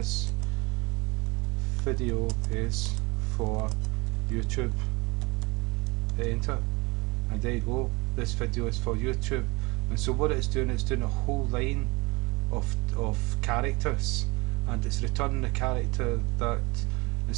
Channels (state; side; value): quieter; left; 25.9 dB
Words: video is for YouTube, hit enter, and there you go, this video is for YouTube. And so what it's doing a whole line of characters, and it's returning a character that,